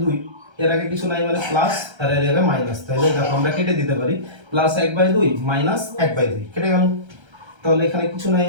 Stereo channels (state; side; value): late; left; 1.3 ms